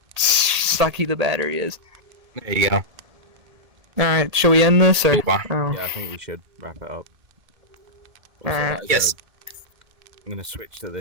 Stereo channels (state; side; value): late; left; 1.8 ms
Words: sucky the battery is. There you go. Alright, shall we end this? Or? Oh. Yeah, I think we should wrap it up. Also, Alright. that is Yes. I'm gonna switch to